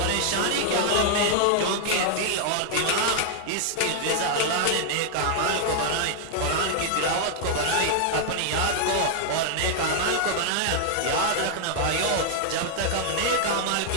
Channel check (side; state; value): both; different; correlation 0.00